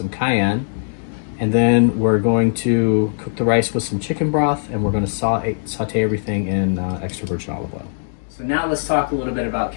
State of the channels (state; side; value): silent; right; digital silence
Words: cayenne. And then we're going to cook the rice with some chicken broth, and we're going to saute everything in extra virgin olive oil. So now let's talk a little bit about